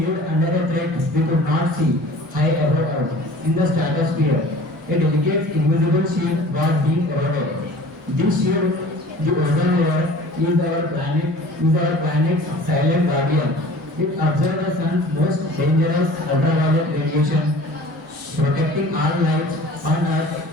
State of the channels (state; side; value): normal; both; correlation 0.45